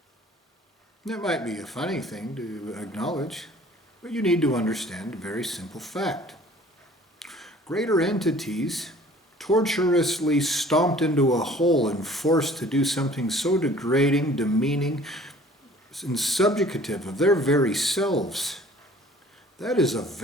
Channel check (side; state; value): both; normal; correlation 0.51